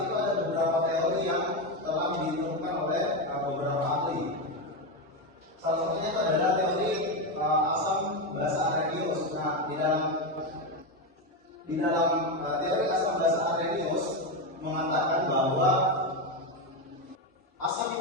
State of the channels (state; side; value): normal; both; correlation 0.11